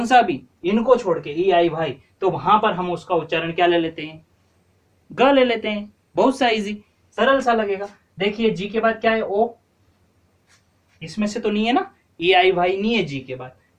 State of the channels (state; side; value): identical; both; correlation 1.00